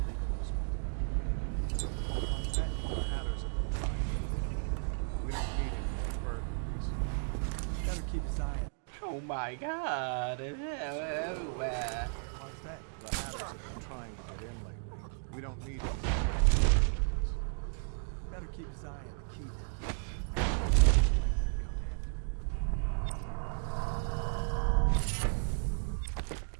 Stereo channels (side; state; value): left; silent; 55 dB below the other